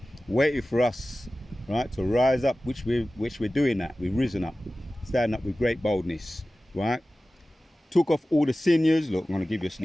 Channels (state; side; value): normal; both; correlation 0.96